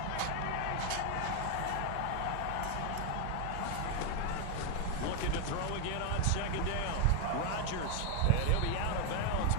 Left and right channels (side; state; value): both; different; correlation 0.00